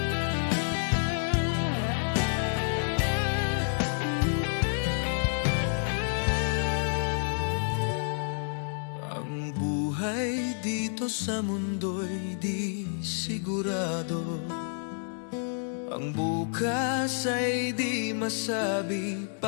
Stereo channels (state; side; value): silent; right; digital silence